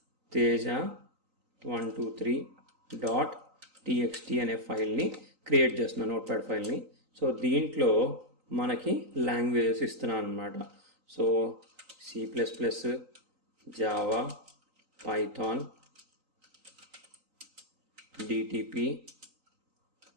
teja123.txt అనే ఫైల్ని క్రియేట్ చేస్తున్నాను, నోట్ప్యాడ్ ఫైల్ని. సో దీంట్లో మనకి లాంగ్వేజెస్ ఇస్తున్నాను అనమాట. So C++, Java, Python, DTP,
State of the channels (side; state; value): left; late; 3.9 ms